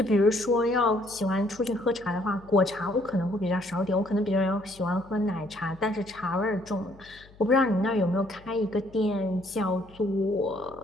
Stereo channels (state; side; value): noise; left; hum, 24 dB below the sound